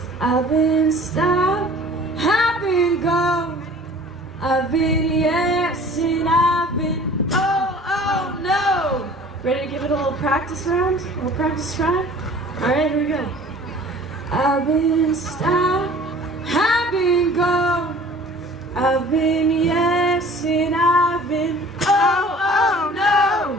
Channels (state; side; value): normal; both; correlation 0.47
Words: I've been stopped, I've been go. I've been yes and I've been oh, oh no. Ready to give it a little practice round? A little practice try? Alright, here we go. I've been stopped, I've been go. I've been yes and I've been oh, oh no.